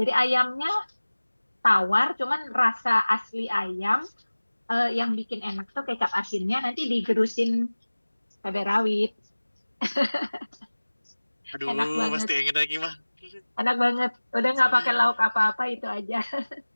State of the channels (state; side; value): inverted; both; correlation -1.00